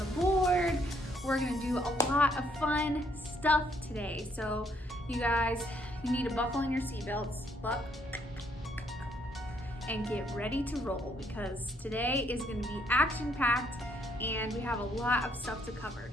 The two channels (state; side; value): normal; both; correlation 0.70